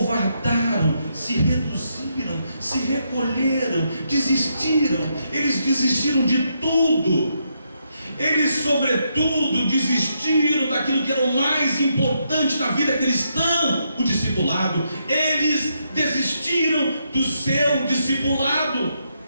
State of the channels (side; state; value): both; inverted; correlation -0.79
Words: se reduziram, se recolheram, desistiram. Eles desistiram de tudo. Eles, sobretudo, desistiram daquilo que era o mais importante na vida cristã, o discipulado. Eles desistiram do seu discipulado.